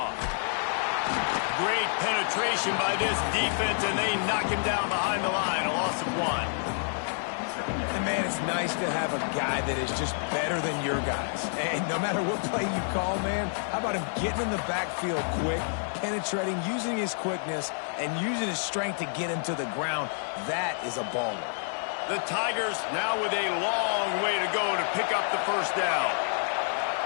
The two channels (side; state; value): right; silent; digital silence